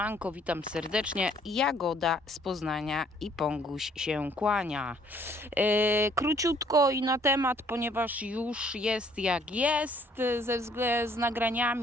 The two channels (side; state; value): both; normal; correlation 0.62